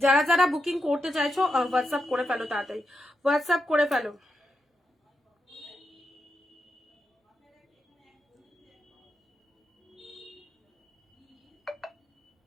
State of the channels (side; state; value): both; normal; correlation 0.86